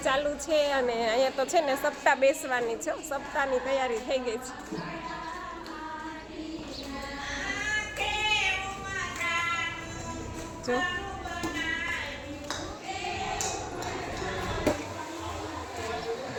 ચાલુ છે અને અહીંયા તો છે ને સપ્તાહ બેસવાની છે, સપ્તાહની તૈયારી થઈ ગઈ છે. જો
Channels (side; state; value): both; identical; correlation 1.00